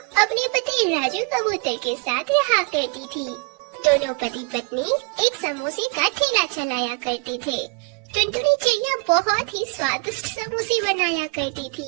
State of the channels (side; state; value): left; quieter; 34.6 dB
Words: अपने पति राजू कबूतर के साथ रहा करती थी। दोनों पति पत्नी एक समोसे का ठेला चलाया करते थे। टुनटुनी चिड़िया बहुत ही स्वादिष्ट समोसे बनाया करती थी